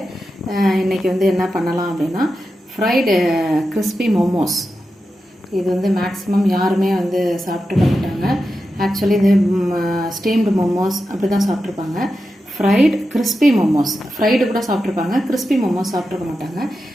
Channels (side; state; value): both; normal; correlation 0.90